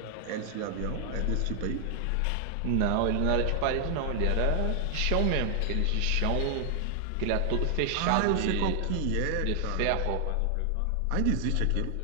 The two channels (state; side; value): different; both; correlation 0.00